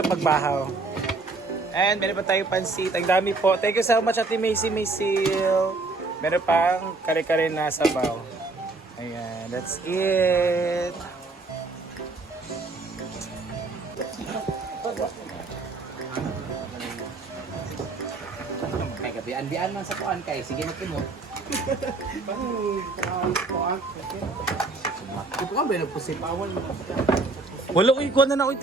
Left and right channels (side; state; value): left; quieter; 3.5 dB